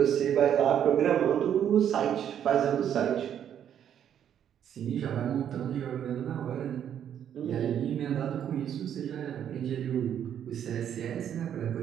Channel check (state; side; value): quieter; left; 9.5 dB